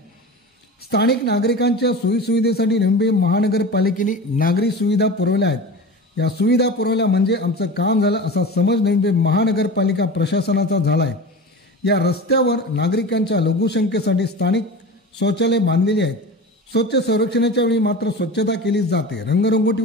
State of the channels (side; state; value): both; normal; correlation 0.32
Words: स्थानिक नागरिकांच्या सोयीसुविधेसाठी नंबी महानगरपालिकेने नागरी सुविधा पुरवल्या आहेत। या सुविधा पुरवल्या म्हणजे आमचं काम झालं असा समज नंबी महानगरपालिका प्रशासनाचा झाला आहे। या रस्त्यावर नागरिकांच्या लघुसंख्येसाठी स्थानिक शौचालय बांधलेली आहेत। स्वच्छ सर्वेक्षणाच्या वेळी मात्र स्वच्छता केली जाते,